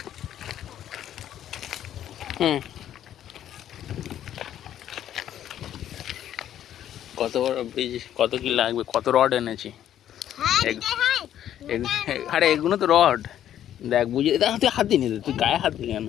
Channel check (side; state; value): right; quieter; 11.0 dB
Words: কত বড় বীজ, কত কি লাগবে, কত রড এনেছি। আরে এগুলো তো রড, দেখ বুঝে দেখ, তুই হাত দিয়ে নিতে, তুই গায়ে হাত দিলি কেন?